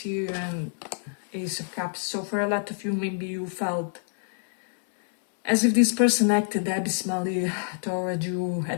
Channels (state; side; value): silent; right; 60 dB below the other